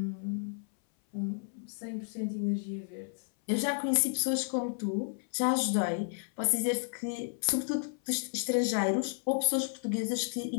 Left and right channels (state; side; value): silent; right; 56 dB below the other